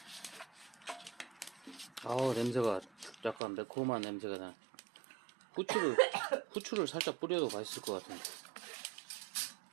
냄새가 약간 매콤한 냄새가 나. 후추를 살짝 뿌려도 맛있을 것 같은데.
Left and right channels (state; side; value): drops out; left; at 3.4 s